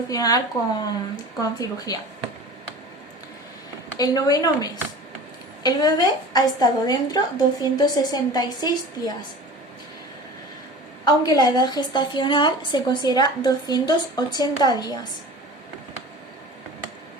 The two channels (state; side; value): normal; both; correlation 0.38